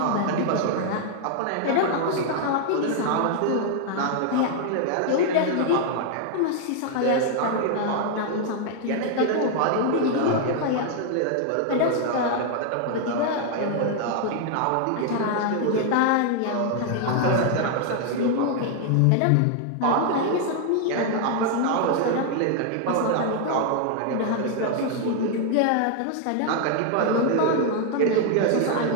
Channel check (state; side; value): different; both; correlation 0.00